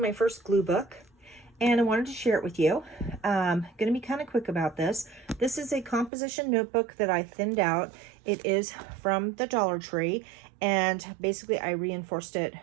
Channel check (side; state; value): left; drops out; at 6.1 s